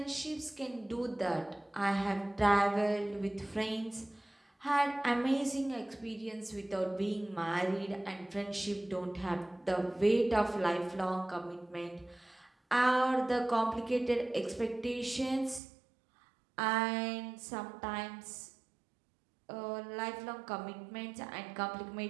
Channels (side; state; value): left; drops out; at 15.6 s